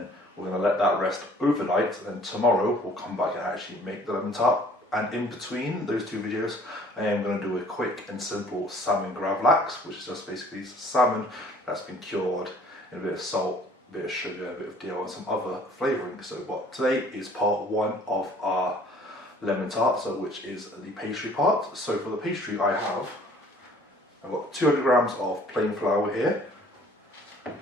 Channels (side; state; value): both; normal; correlation 0.54